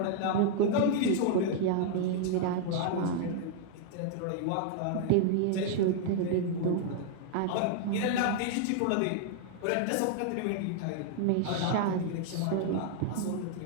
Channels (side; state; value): both; different; correlation -0.01